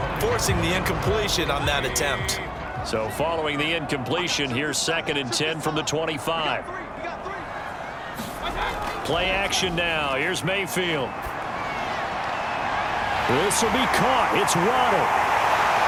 forcing the incompletion on that attempt. So following the incompletion, here's 2nd and 10 from the 25. Play action now. Here's Mayfield. This will be caught. It's Waddle.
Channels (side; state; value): both; identical; correlation 1.00